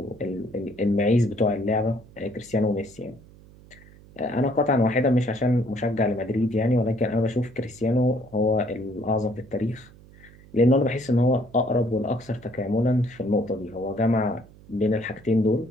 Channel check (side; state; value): right; noise; hum, 23 dB below the sound